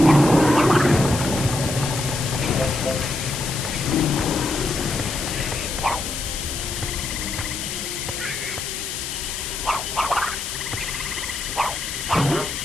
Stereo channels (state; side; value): noise; left; hiss, 5 dB below the sound